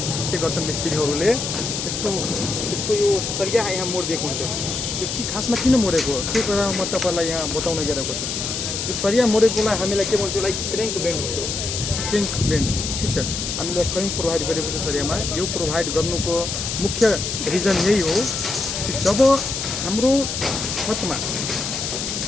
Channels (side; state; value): left; noise; hiss, 3 dB below the sound